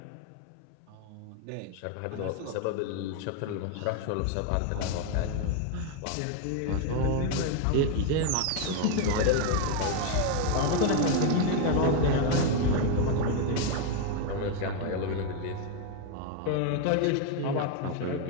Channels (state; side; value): different; both; correlation 0.01